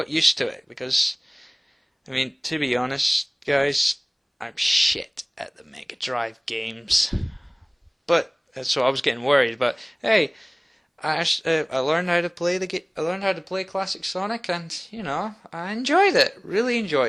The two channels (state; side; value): identical; both; correlation 1.00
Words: used to it, because, I mean, to be honest, guys, I'm shit at the Mega Drive games. But, so I was getting worried, but hey, I learned how to play I learned how to play classic Sonic, and, I enjoyed it, really